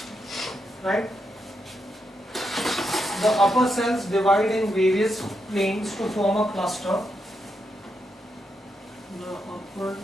right? The upper cells divide in various planes to form a cluster. The upper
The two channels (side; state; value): both; normal; correlation 0.83